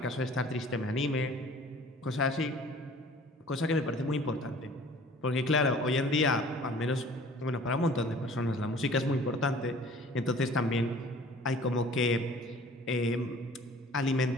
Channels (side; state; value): both; normal; correlation 0.49